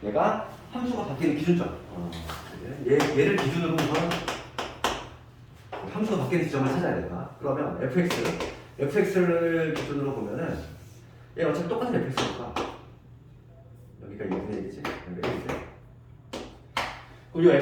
얘가 함수가 바뀌는 기준점. 얘를 기준으로 우선 함수가 바뀌는 지점을 찾아야 된다. 그러면 fx를 기준으로 보면은 얘 어차피 똑같은 fx니까 여기가 2분의 1이지? 여기가 1이지? 그럼 이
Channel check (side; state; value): both; identical; correlation 1.00